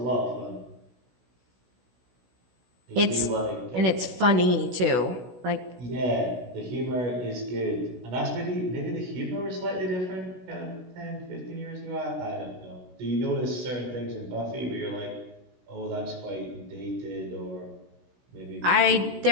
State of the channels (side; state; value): left; late; 16 ms